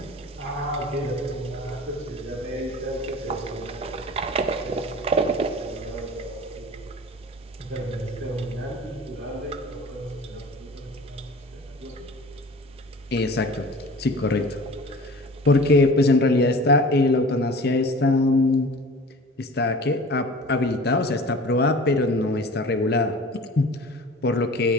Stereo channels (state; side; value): normal; both; correlation 0.41